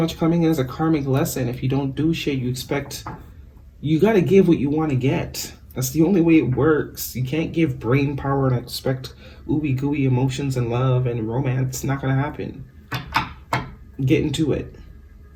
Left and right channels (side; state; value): both; identical; correlation 1.00